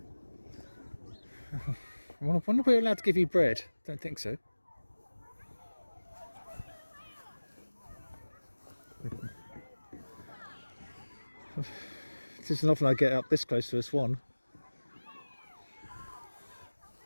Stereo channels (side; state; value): both; inverted; correlation -1.00